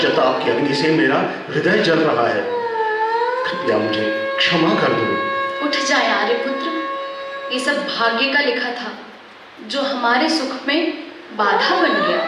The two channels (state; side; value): identical; both; correlation 1.00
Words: की अग्नि से मेरा हृदय जल रहा है। कृपया मुझे क्षमा कर दो। उठ जाए आर्यपुत्र, ये सब भाग्य का लिखा था जो हमारे सुख में बाधा बन गया।